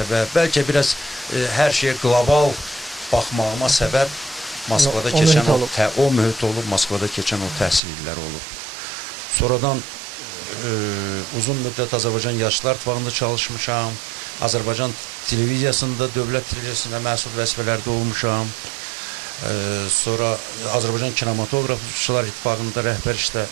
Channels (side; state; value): left; drops out; at 7.8 s